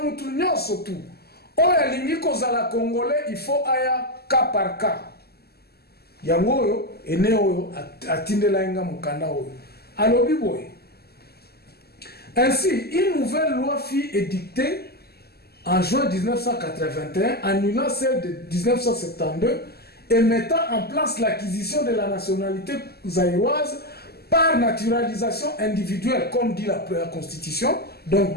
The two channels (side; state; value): right; late; 0.46 ms